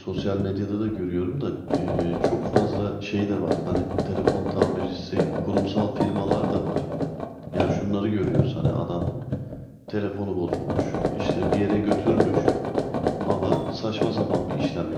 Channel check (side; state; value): both; identical; correlation 1.00